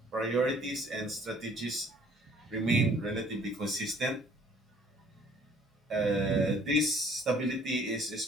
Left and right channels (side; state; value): both; normal; correlation 0.57